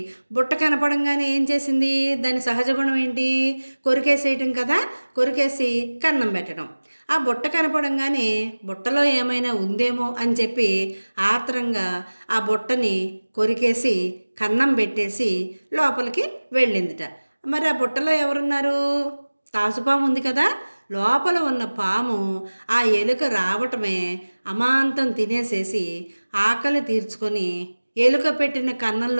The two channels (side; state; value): both; inverted; correlation -1.00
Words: బుట్ట కనపడంగానే ఏం చేసింది? దాని సహజ గుణం ఏంటి? కొరికేసేయటం కదా. కొరికేసి కన్నం పెట్టడం. ఆ బుట్ట కనపడంగానే బుట్టలో ఏమైనా ఉందేమో అని చెప్పి ఆత్రంగా ఆ బుట్టని కొరికేసి కన్నం పెట్టేసి లోపలికి వెళ్ళిందిట. మరి ఆ బుట్టలో ఎవరున్నారు? తాసుపాము ఉంది కదా. లోపల ఉన్న పాము ఆ ఎలుక రావటమే అమాంతం తినేసేసి ఆకలి తీర్చుకొని ఎలుక పెట్టిన